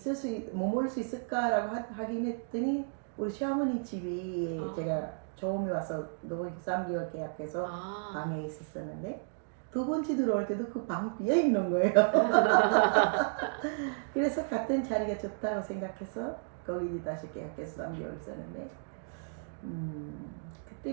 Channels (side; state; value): left; silent; digital silence